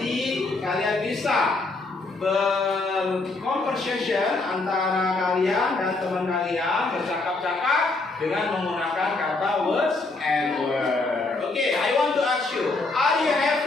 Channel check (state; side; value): quieter; right; 3.4 dB